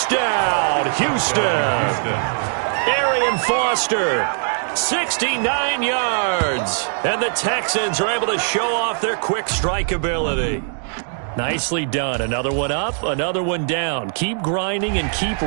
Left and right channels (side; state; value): left; silent; digital silence